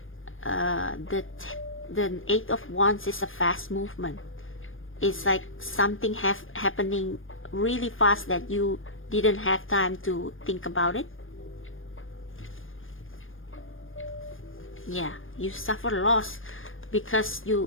the 8 of Wands is a fast movement. It's like something happening really fast that you didn't have time to think about it. Yeah, you suffer loss because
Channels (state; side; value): late; right; 0.59 ms